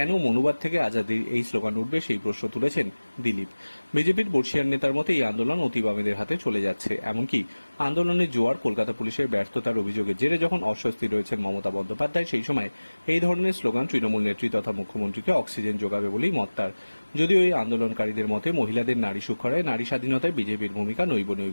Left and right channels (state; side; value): inverted; both; correlation -1.00